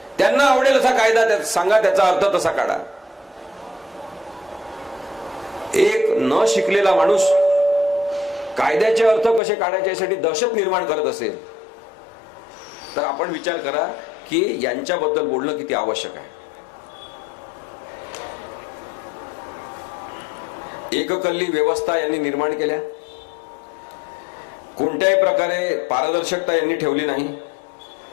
त्यांना आवडेल असा कायदा सांगा, त्याचा अर्थ तसा काढा. एक न शिकलेला माणूस कायद्याचे अर्थ कसे काढायचे यासाठी दहशत निर्माण करत असेल तर आपण विचार करा की यांच्याबद्दल बोलणं किती आवश्यक आहे. एककल्ली व्यवस्था यांनी निर्माण केल्या, कोणत्याही प्रकारे पारदर्शकता यांनी ठेवली नाही,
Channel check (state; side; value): drops out; right; at 9.4 s